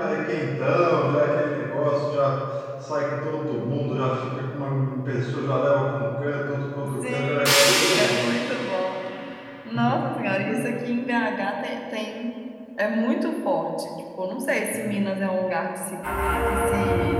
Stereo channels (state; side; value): identical; both; correlation 1.00